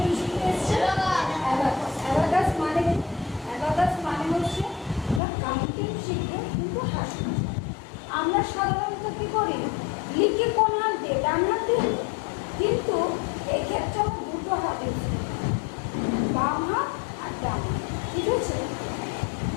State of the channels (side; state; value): right; drops out; at 5.2 s